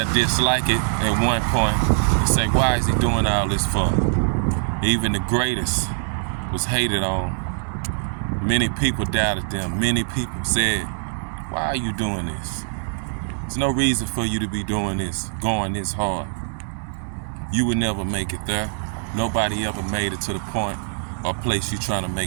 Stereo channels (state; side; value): silent; left; digital silence